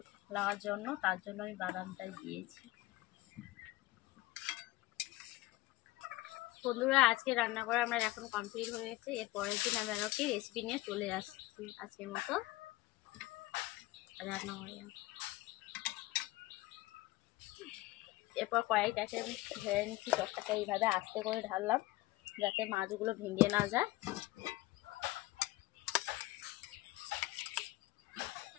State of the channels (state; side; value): quieter; right; 19.0 dB